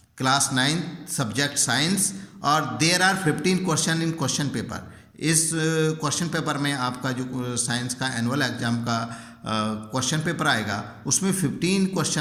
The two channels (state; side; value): identical; both; correlation 1.00